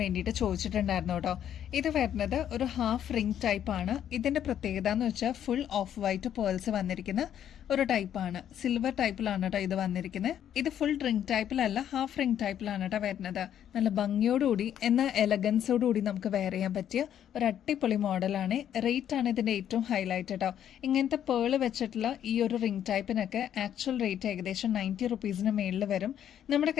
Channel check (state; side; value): quieter; right; 10.1 dB